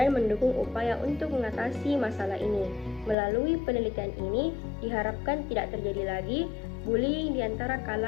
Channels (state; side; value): drops out; right; at 3.2 s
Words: mendukung upaya untuk mengatasi masalah ini. Melalui penelitian ini, diharapkan tidak terjadi lagi bullying di antara